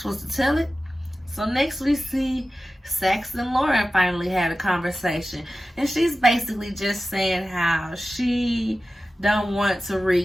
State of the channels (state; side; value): normal; both; correlation 0.95